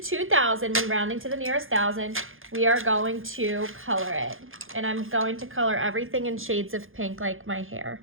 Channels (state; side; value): late; left; 0.59 ms